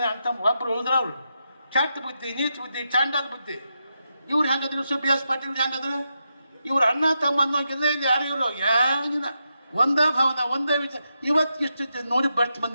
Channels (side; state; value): both; inverted; correlation -0.85